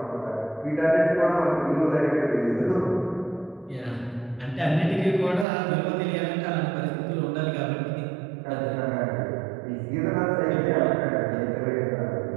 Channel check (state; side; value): drops out; left; at 5.5 s